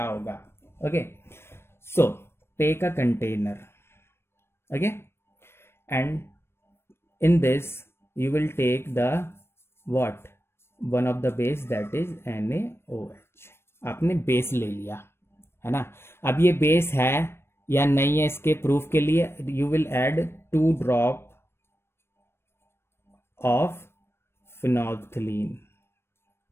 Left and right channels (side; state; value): right; late; 0.12 ms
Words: होगा। Okay, so take a container, okay, and in this you will take the what? One of the base that is NaOH। आपने बेस ले लिया है ना। अब ये बेस है या नहीं है, इसके प्रूफ के लिए you will add 2 drop of phenolphthalein,